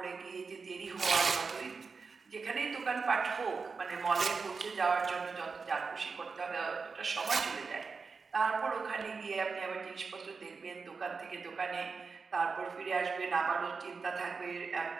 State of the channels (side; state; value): left; quieter; 4.8 dB